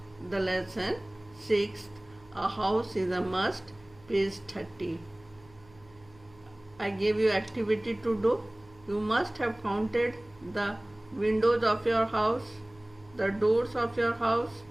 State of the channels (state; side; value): noise; right; hum, 26 dB below the sound